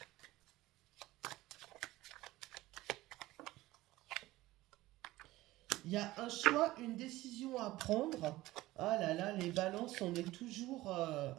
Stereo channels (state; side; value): quieter; left; 17.6 dB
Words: Il y a un choix, une décision à prendre. Ah là là, les balances, on est toujours